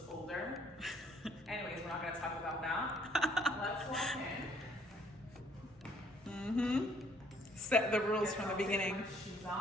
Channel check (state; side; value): normal; both; correlation 0.62